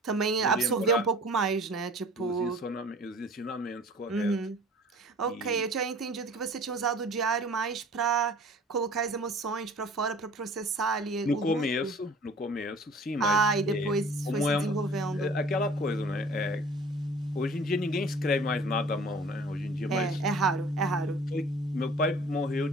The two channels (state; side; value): normal; both; correlation 0.47